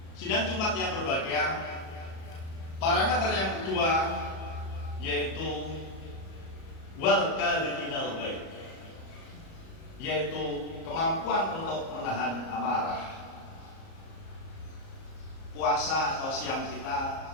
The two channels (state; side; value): late; right; 37 ms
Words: Sidang Jumat yang berbahagia, parameter yang kedua yaitu wal kadhiminal ghaib, yaitu kemampuan untuk menahan amarah. Puasa atau siam kita